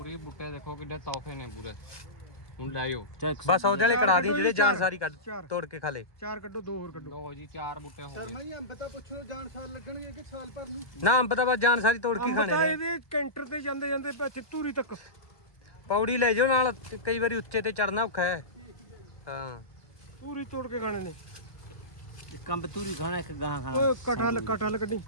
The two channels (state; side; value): late; right; 1.2 ms